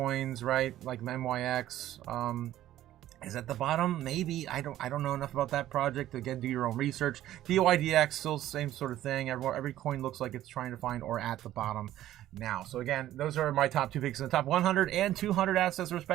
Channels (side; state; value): left; quieter; 13.4 dB